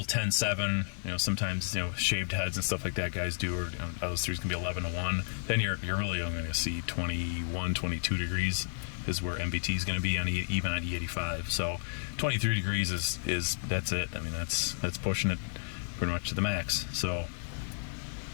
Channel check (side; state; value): right; silent; digital silence